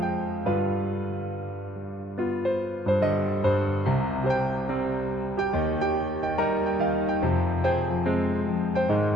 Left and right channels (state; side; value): normal; both; correlation 0.64